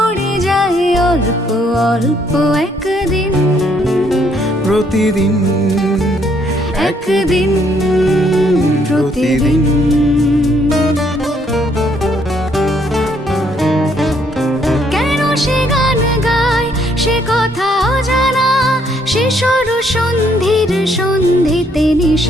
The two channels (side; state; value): both; normal; correlation 0.69